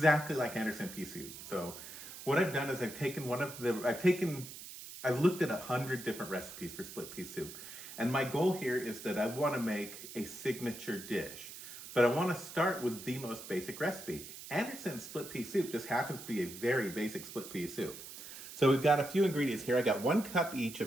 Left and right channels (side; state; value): right; noise; hiss, 12 dB below the sound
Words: like Anderson pea soup. So what I've done is I've looked at 100 different recipes for split pea soup. And my goal here is that I want to make a signature dish. But I want to start with the most basic recipe. Anderson's split pea soup just happens to be a very basic split pea soup. So we've got a few ingredients here. I got 1 cup each